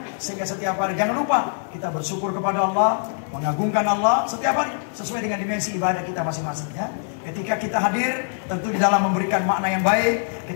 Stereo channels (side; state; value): right; silent; digital silence